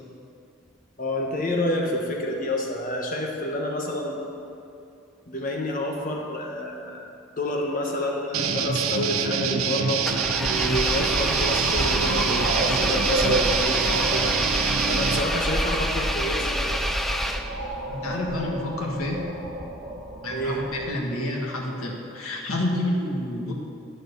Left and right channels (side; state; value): both; normal; correlation 0.38